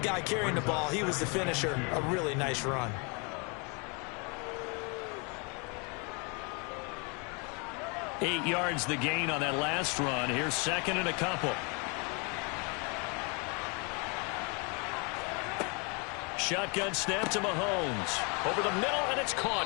carrying the ball, he was the finisher. A really nice run. Eight yards the gain on that last run. Here's second and a couple. Shotgun snap to Mahomes. Over the middle, and it's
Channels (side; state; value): right; quieter; 33.2 dB